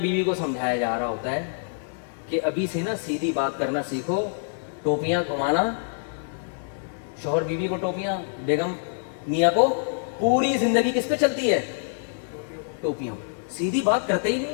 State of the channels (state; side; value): silent; right; digital silence